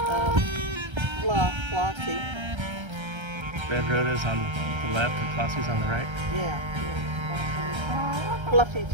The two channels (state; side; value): late; left; 1.3 ms